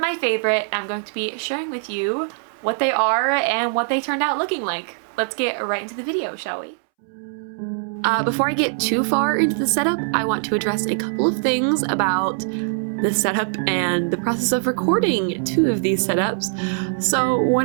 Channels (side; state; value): left; silent; 64 dB below the other